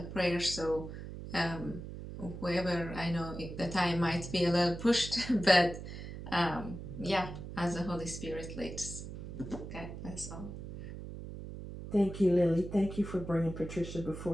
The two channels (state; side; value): noise; right; hum, 9 dB below the sound